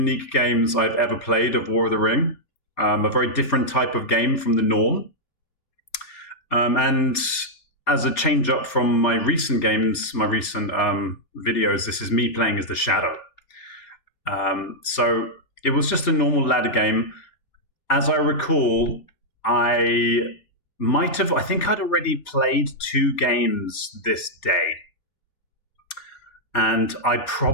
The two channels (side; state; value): right; late; 3.2 ms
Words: games I've ever played of War of the Ring, a very different type of game from the norm. And as a change up from my recent games, my recent videos, this is me playing as the Shadow. So it was just a normal ladder game. As I recall, I think I'd already played 2 games this day. And I